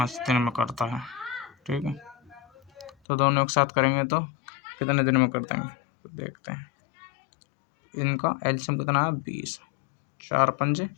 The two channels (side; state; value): right; drops out; at 2.9 s